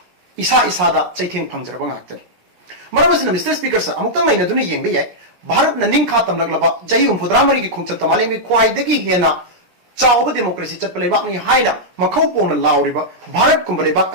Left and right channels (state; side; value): late; left; 17 ms